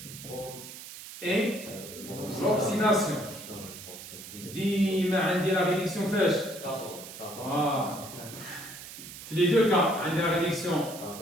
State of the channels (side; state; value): right; noise; hiss, 13 dB below the sound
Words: اي l'oxydation ديما عندي لا ريدكسيون فاش في لي دو كا عندي لا ريدكسيون